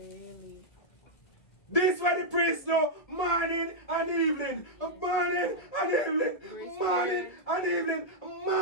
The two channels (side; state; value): right; late; 1.7 ms